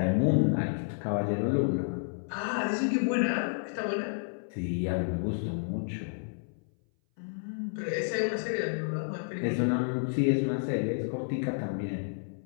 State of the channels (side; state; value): right; silent; 57 dB below the other